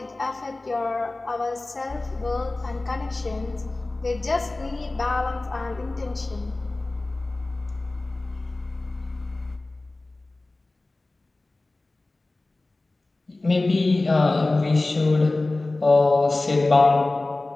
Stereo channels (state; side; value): quieter; right; 3.0 dB